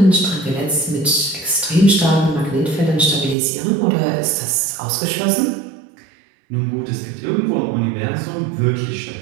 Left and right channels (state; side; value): drops out; left; at 3.4 s